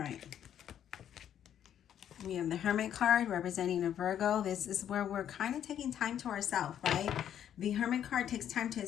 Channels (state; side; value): quieter; right; 9.9 dB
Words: right. We have the Hermit card representing a Virgo. This is where we're kind of taking time to ourselves, right? The Hermit card takes time to